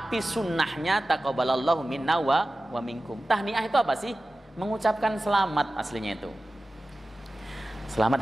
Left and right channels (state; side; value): normal; both; correlation 0.95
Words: sunnahnya taqabbalallahu minna wa minkum. Tahniah itu apa sih? Mengucapkan selamat aslinya itu.